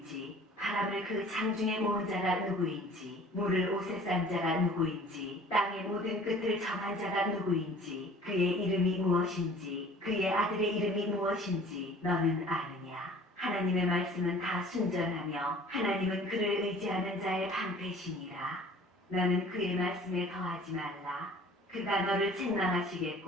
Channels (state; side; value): normal; both; correlation 0.49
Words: 바람을 그 장중에 모은 자가 누구인지 물을 옷에 싼 자가 누구인지 땅의 모든 끝을 정한 자가 누구인지 그의 이름이 무엇인지 그의 아들의 이름이 무엇인지 너는 아느냐. 하나님의 말씀은 다 순전하며 하나님은 그를 의지하는 자의 방패시니라. 너는 그의 말씀에 더하지 말라. 그가 너를